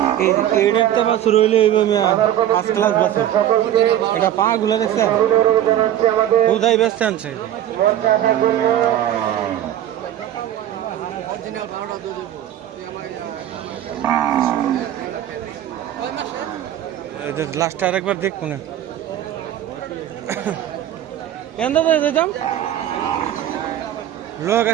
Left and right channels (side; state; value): left; quieter; 11.6 dB